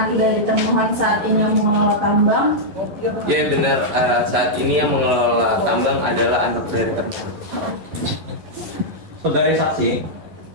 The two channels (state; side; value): late; left; 12 ms